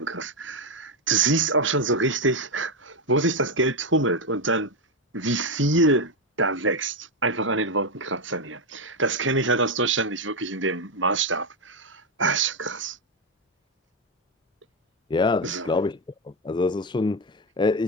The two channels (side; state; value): both; normal; correlation 0.07